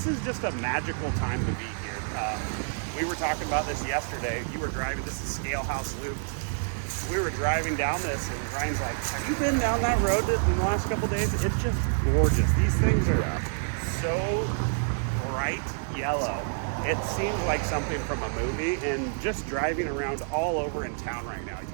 is just a magical time to be here. We were talking about this yesterday. You were driving, this is Scale House Loop. We were driving down this and Ryan's like, have you been down that road in the last couple days? It's just gorgeous. These things are so bright yellow. It seems like something from a movie, and just driving around all over in town right now, you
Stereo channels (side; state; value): left; silent; digital silence